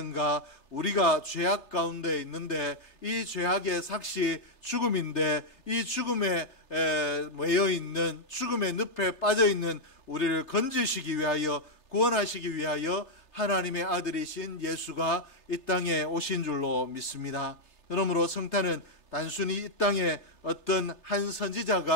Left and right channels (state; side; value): late; right; 3.3 ms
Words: 우리가 죄악 가운데 있는데 이 죄악의 삭시 죽음인데, 이 죽음에 매여 있는, 죽음의 늪에 빠져 있는 우리를 건지시기 위하여, 구원하시기 위하여 하나님의 아들이신 예수가 이 땅에 오신 줄로 믿습니다. 그러므로 성탄은 단순히 이 땅에 어떤 한